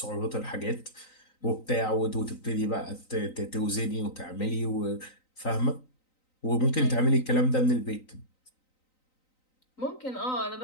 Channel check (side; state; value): right; late; 3.9 ms